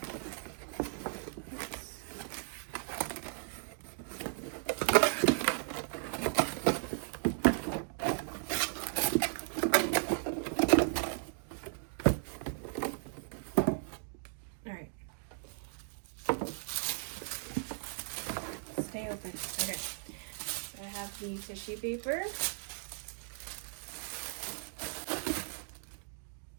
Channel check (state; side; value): silent; left; digital silence